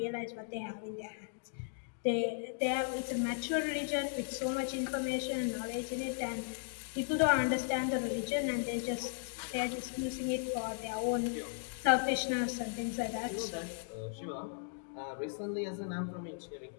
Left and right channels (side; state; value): right; silent; digital silence